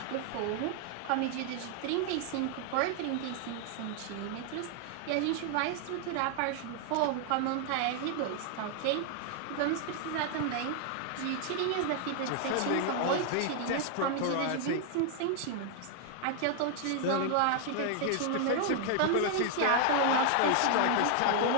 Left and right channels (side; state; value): both; different; correlation 0.00